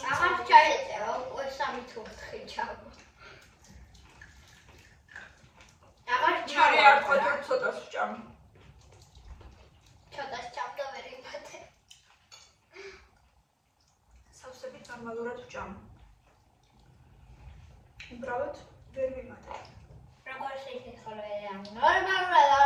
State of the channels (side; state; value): both; identical; correlation 1.00